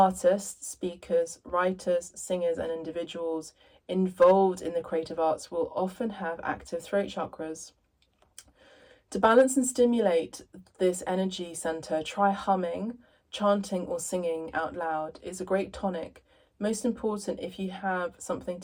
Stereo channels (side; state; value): both; identical; correlation 1.00